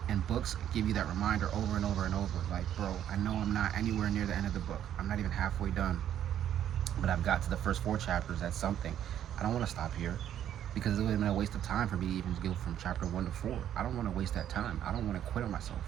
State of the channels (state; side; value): quieter; left; 10.5 dB